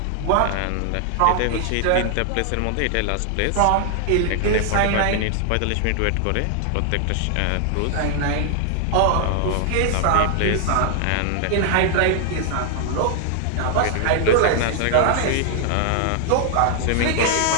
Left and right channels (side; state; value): both; different; correlation 0.00